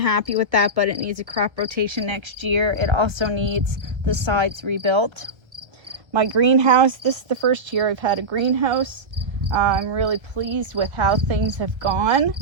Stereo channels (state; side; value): late; left; 1.5 ms